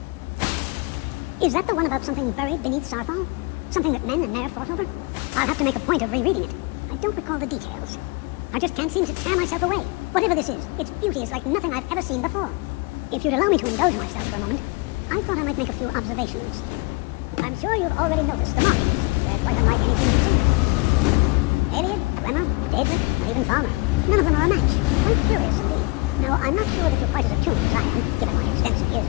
Is that the one about something buried beneath Starfall? Something that men and Nair fought over? I'll have to make a point of rereading it. I don't recall the details. I just can't seem to tear myself away. Whatever this is, its beauty is like nothing I've ever seen before. If you'd allow me to indulge myself for a moment, I thought I might make a few observations. I'm sure you've already noticed the markings. They're quite striking. Alien, Glenna, Daedric, or even Farmer. None of them are a match. Quite curious indeed. Now, I'm not sure that you're quite as attuned as I am, given my extensive years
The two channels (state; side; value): quieter; right; 26.7 dB